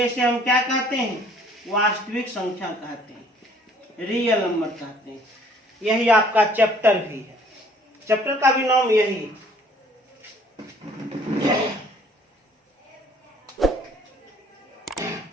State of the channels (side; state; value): both; normal; correlation 0.57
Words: इसे हम क्या कहते हैं? वास्तविक संख्या कहते हैं, रियल नंबर कहते हैं। यही आपका चैप्टर भी है, चैप्टर का भी नाम यही।